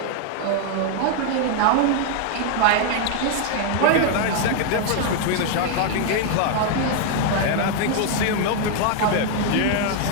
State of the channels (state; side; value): different; both; correlation 0.00